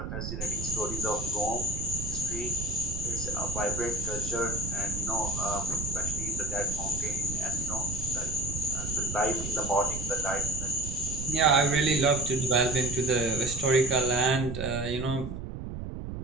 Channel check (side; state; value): right; noise; rumble, 7 dB below the sound